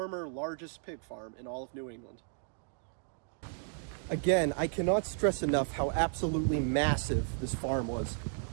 largest pig farm in all of New England. Again, I cannot stress enough how absolutely massive this farm was.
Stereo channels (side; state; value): left; silent; digital silence